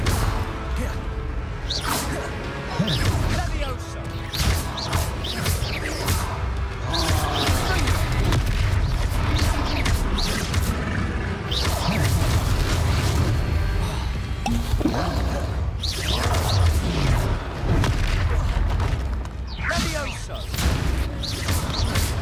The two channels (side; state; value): both; identical; correlation 1.00